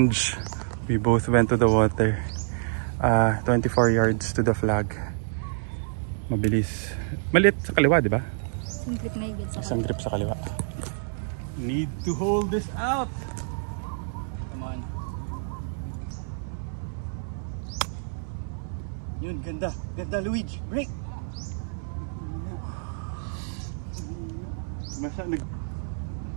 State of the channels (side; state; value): left; silent; 60 dB below the other